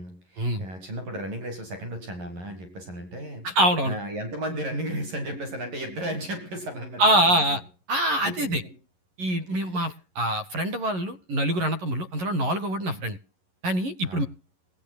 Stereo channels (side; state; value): left; late; 11 ms